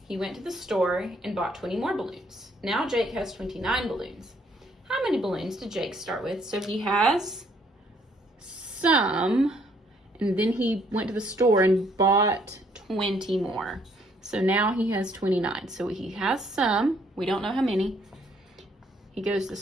He went to the store and bought 20 more balloons. Now Jake has 29 balloons. How many balloons did Jake start with? So he has some, and then he went to the store and bought 20 more. So now he has 29. So he has some, we don't know how many. He goes to the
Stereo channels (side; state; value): both; normal; correlation 0.66